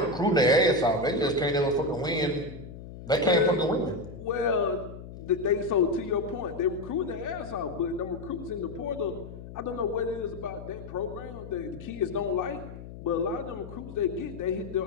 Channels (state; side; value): noise; left; hum, 13 dB below the sound